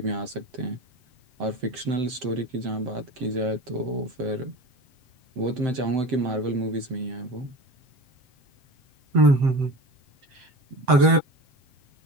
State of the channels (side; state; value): left; late; 7.7 ms